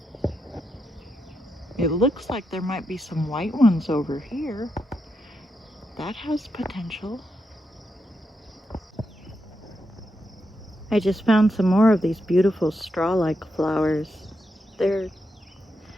It looks like there might be some white ones over here. That has potential. I just found some more of these beautiful straw-like flowers. They're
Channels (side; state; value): both; normal; correlation 0.84